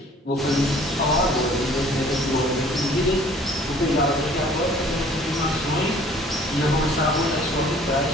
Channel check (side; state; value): both; normal; correlation 0.53